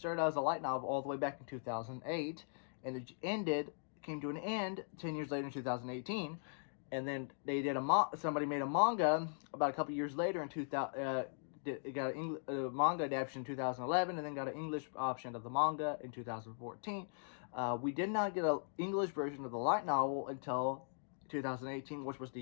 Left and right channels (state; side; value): silent; right; digital silence